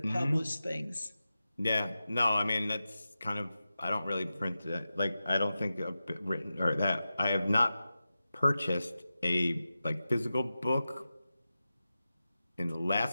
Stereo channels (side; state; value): both; inverted; correlation -0.93